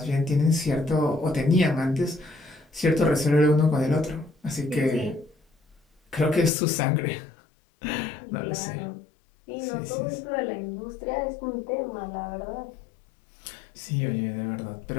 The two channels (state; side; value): drops out; right; at 6.5 s